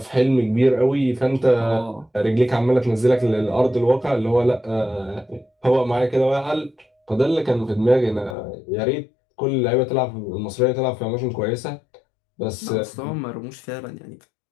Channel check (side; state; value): right; drops out; at 8.3 s